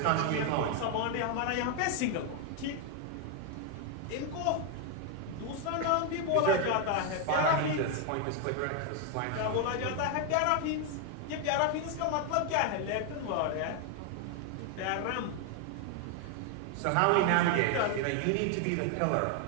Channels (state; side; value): different; both; correlation 0.00